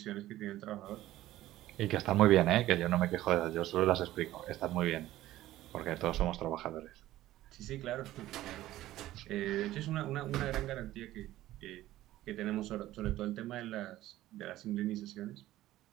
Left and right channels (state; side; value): quieter; left; 15.1 dB